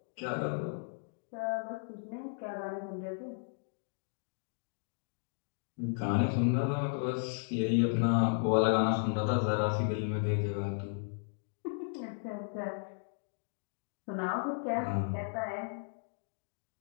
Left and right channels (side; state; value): right; silent; digital silence